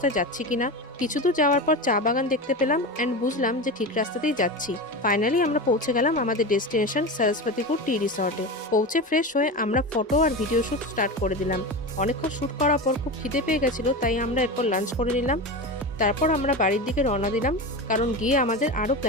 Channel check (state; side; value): normal; both; correlation 0.23